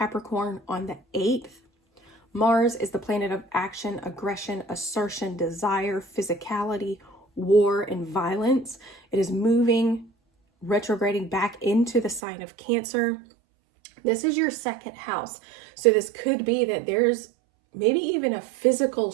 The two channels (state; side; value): drops out; left; at 12.2 s